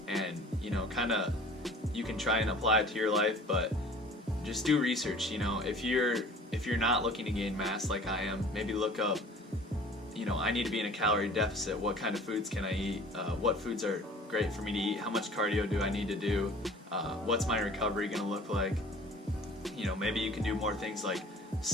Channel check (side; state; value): both; normal; correlation 0.47